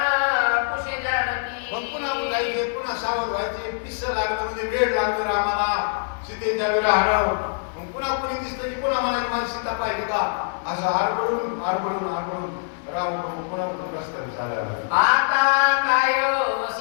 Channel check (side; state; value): right; silent; 56 dB below the other